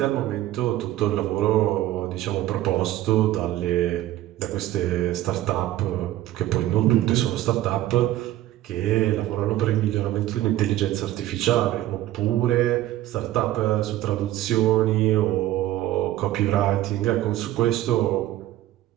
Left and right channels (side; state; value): left; quieter; 14.4 dB